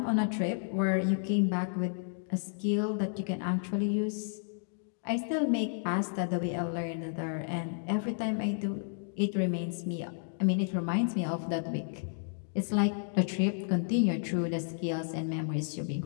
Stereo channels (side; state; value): right; silent; digital silence